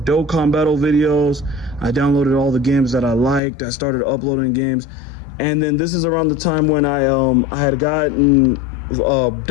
Dokkan battle videos. I downloaded all the games that I liked. I started uploading games. And then this is around the time when I had gotten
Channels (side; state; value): right; drops out; at 3.4 s